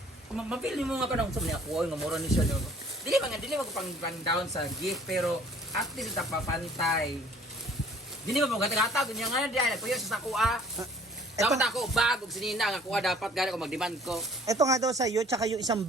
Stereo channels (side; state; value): both; normal; correlation 0.54